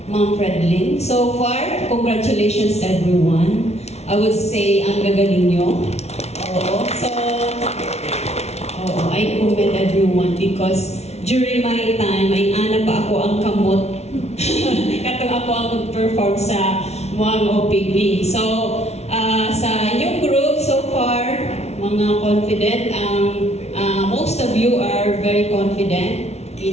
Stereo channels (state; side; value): late; right; 0.31 ms